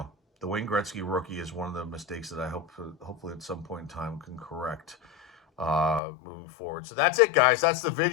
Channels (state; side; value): drops out; right; at 6.0 s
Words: the Wayne Gretzky rookie is one of the mistakes that I hopefully at some point in time can correct moving forward. So that's it, guys. That's the